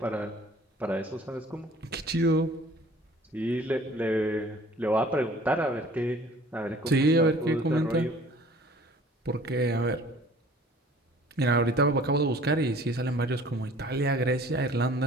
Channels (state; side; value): normal; both; correlation 0.51